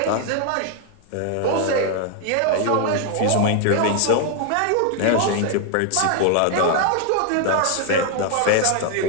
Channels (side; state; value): both; different; correlation 0.00